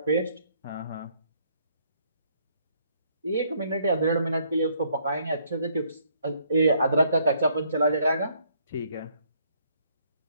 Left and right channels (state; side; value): inverted; both; correlation -0.67